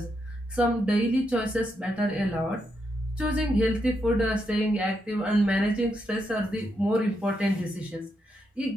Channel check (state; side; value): normal; both; correlation 0.81